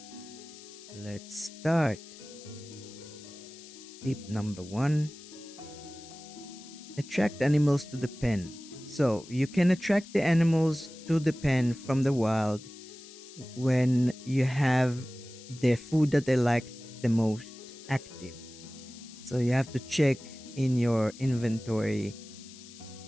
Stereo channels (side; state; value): left; noise; hiss, 18 dB below the sound